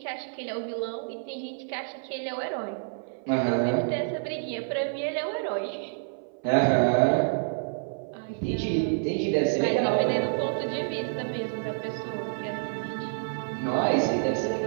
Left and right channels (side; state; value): left; silent; 55 dB below the other